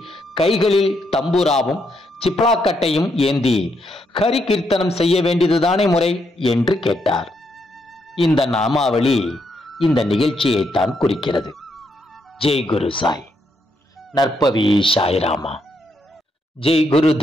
கைகளில் தம்பூராவும் சிப்ளாக்கட்டையும் ஏந்தி ஹரி கீர்த்தனம் செய்ய வேண்டியதுதானே முறை என்று கேட்டார். இந்த நாமாவளி இந்த நிகழ்ச்சியைத்தான் குறிக்கிறது. ஜெய் குரு சாய். நற்பவி சாய்ராமா. ஜெய் குரு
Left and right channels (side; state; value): both; normal; correlation 0.77